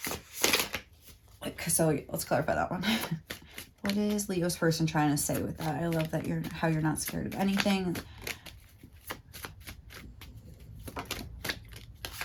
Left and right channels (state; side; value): identical; both; correlation 1.00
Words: So let's clarify that one. What is Leo's person trying to say with that? I love that how you're not scared of anything.